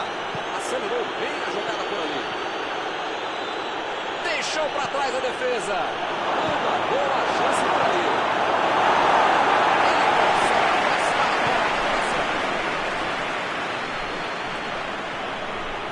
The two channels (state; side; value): identical; both; correlation 1.00